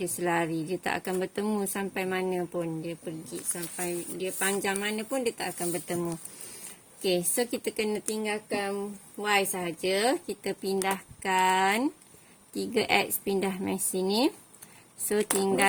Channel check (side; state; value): both; identical; correlation 1.00